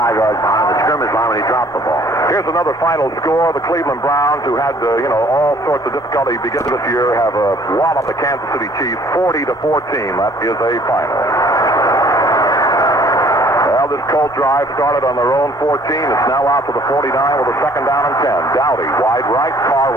yards behind the scrimmage line when he dropped the ball. Here's another final score. The Cleveland Browns, who had all sorts of difficulty beginning this year, have walloped the Kansas City Chiefs 40-14. That is a final. Well, this Colt drive started on their own 14. It's now out to the 49 with a second down and 10. Dowdy wide right, Carr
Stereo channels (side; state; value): both; normal; correlation 0.57